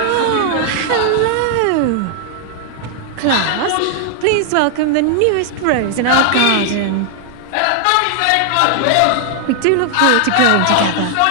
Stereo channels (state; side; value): different; both; correlation 0.00